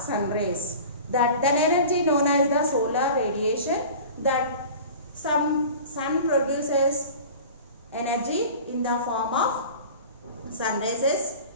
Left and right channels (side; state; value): both; inverted; correlation -0.39